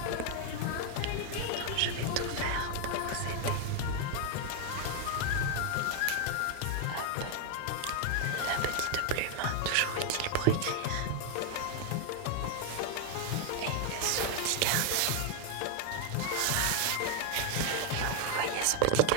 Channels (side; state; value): both; different; correlation 0.00